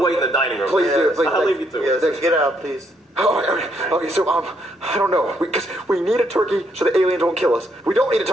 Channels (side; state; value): both; normal; correlation 0.73